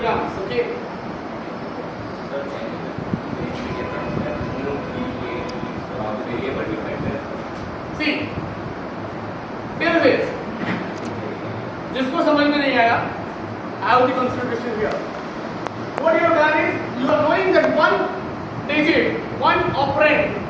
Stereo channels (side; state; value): both; identical; correlation 1.00